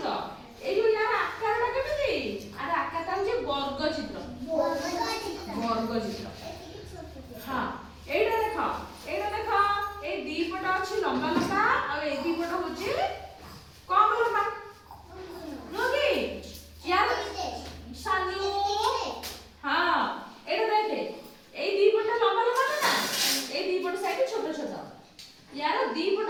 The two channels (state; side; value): identical; both; correlation 1.00